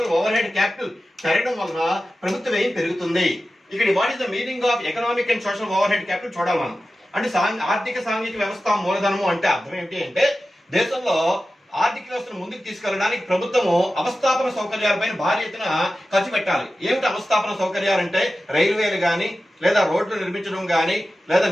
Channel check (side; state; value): both; normal; correlation 0.94